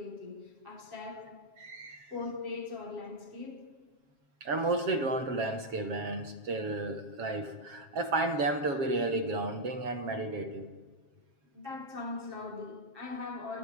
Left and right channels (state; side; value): late; left; 7.4 ms